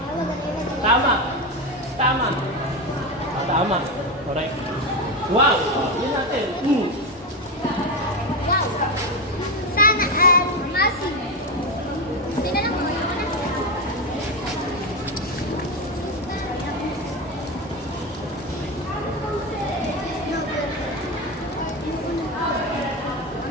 Tama. Correct. Wow. Yun natin. Sana Masi. Sinalang mo yun.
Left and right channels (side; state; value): both; normal; correlation 0.14